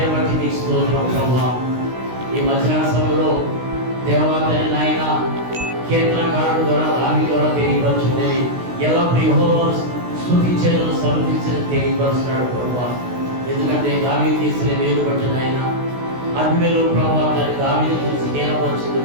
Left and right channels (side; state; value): left; late; 16 ms